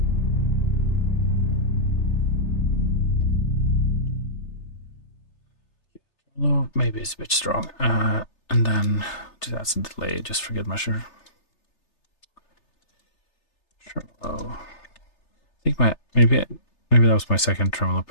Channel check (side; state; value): right; late; 3.3 ms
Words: Well, maybe it's a bit strong. And then do that some delay, just for good measure. Tremolo. I think maybe that was my second tremolo